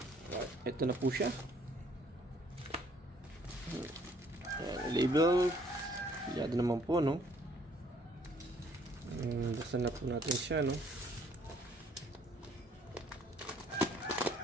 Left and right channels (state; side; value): normal; both; correlation 0.62